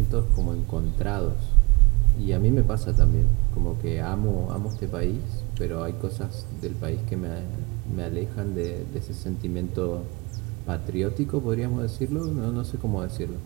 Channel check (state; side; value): quieter; left; 27.1 dB